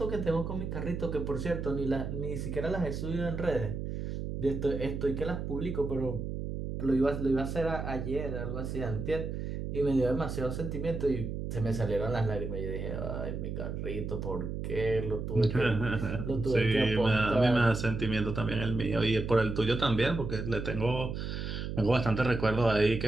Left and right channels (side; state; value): right; noise; hum, 4 dB below the sound